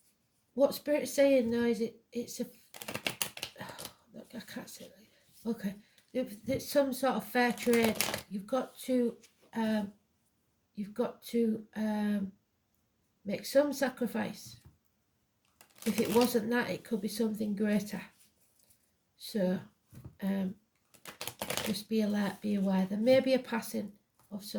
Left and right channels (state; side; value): identical; both; correlation 1.00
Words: what Spirit's saying though is it's a look, I can't say it like that. Okay, it's some sort of fair trade. You've got to make some sacrifice. If it wasn't that, it could be something greater. So just be alert, be aware. There may be a passing of